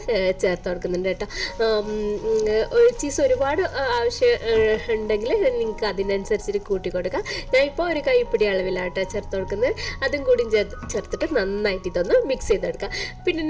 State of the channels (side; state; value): both; identical; correlation 1.00